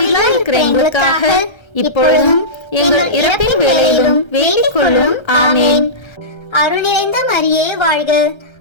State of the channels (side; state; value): right; late; 1.3 ms